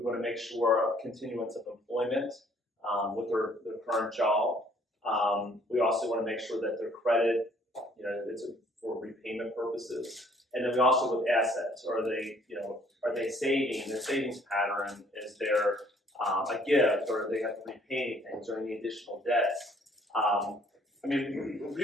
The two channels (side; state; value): both; normal; correlation 0.61